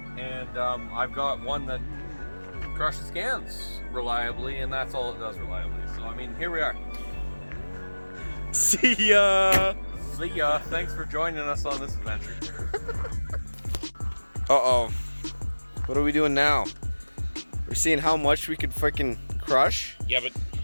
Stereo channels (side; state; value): both; inverted; correlation -1.00